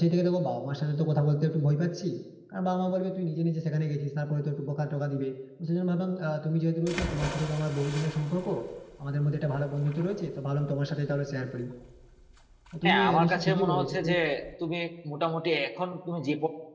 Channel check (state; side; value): identical; both; correlation 1.00